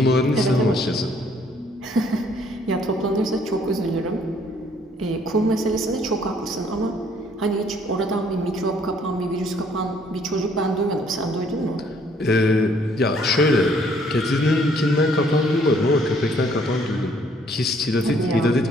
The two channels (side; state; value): both; normal; correlation 0.63